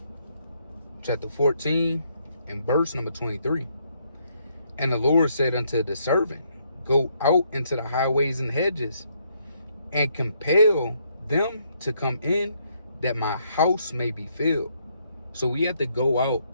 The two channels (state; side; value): inverted; both; correlation -0.72